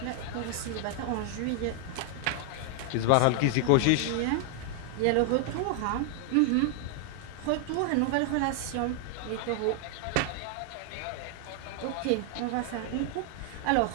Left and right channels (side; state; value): both; different; correlation 0.00